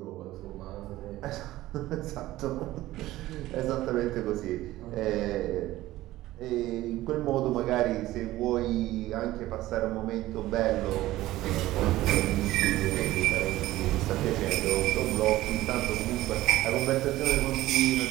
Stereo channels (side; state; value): left; quieter; 16.3 dB